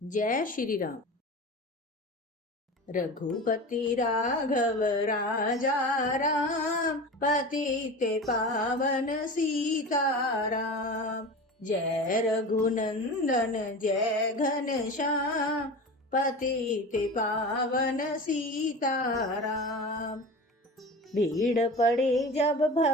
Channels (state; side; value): normal; both; correlation 0.31